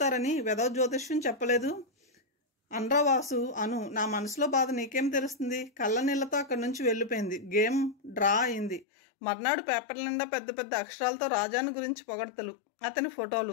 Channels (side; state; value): right; drops out; at 8.8 s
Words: వెధవ జ్యోతిష్యం చెప్పలేదు అనరా వాసు. అను, నా మనసులో బాధ నీకేం తెలుస్తుంది? కళ్ళ నీళ్లతో అక్కడి నుంచి వెళ్ళిపోయింది. గేమ్ డ్రా అయింది. మర్నాడు పేపర్ల నిండా పెద్ద పెద్ద అక్షరాలతో రాజాని గురించి పొగడ్తలు, అతని